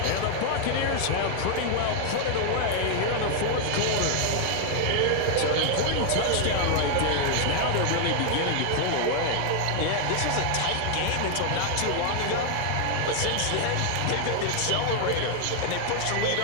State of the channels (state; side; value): different; both; correlation 0.00